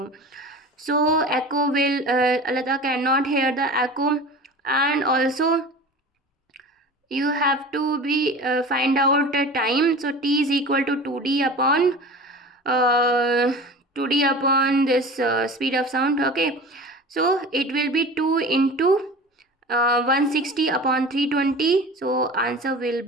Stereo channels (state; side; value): normal; both; correlation 0.37